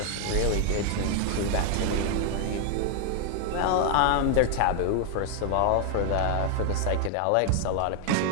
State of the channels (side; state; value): both; different; correlation 0.01